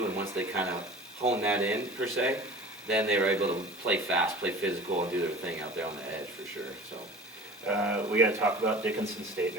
And once they kind of hone that in, per se, then they were able to play fast, play physical, and do their thing out there on the edge for sure. So we got to talk about Dickinson State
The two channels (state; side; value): normal; both; correlation 0.40